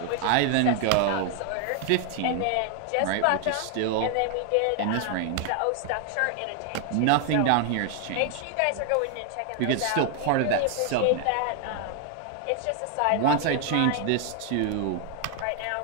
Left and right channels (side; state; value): both; different; correlation 0.00